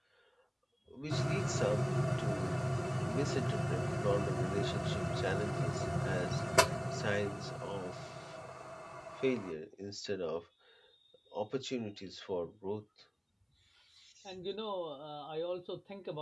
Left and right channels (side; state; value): both; identical; correlation 1.00